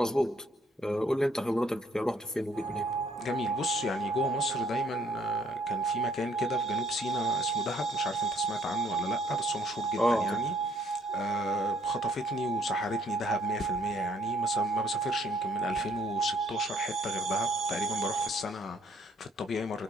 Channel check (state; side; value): normal; both; correlation 0.65